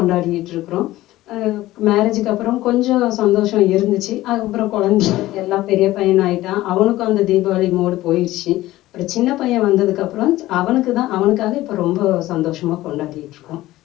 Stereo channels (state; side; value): quieter; right; 16.4 dB